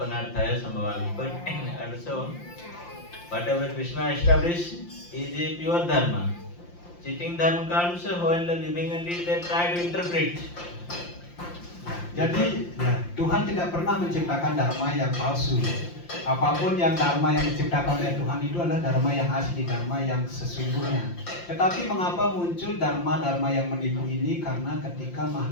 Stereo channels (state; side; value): late; right; 5.7 ms